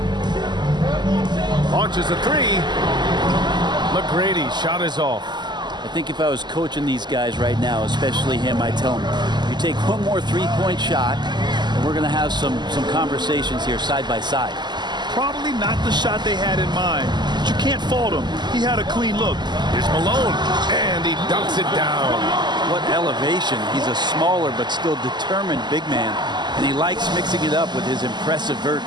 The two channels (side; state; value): left; late; 0.21 ms